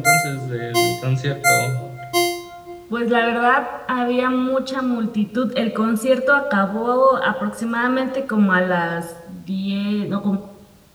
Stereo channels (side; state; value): both; identical; correlation 1.00